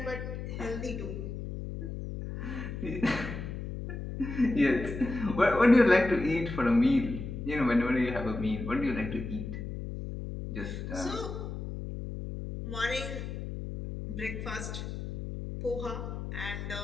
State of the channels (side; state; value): left; noise; hum, 6 dB below the sound